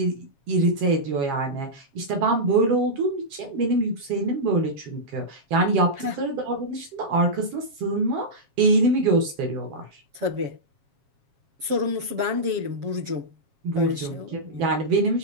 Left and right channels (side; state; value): left; late; 7.3 ms